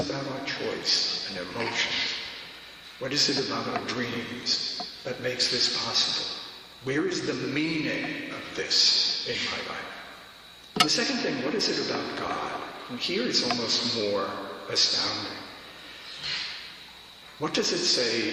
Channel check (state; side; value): identical; both; correlation 1.00